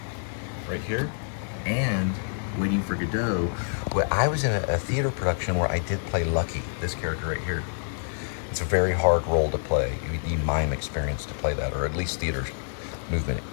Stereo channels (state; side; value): silent; right; 60 dB below the other